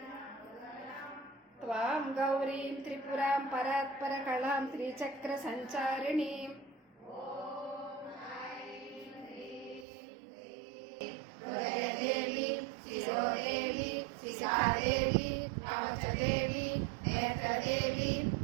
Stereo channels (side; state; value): left; drops out; at 9.9 s